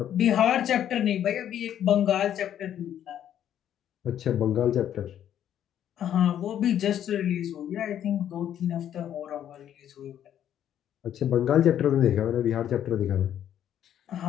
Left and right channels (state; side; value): quieter; right; 10.4 dB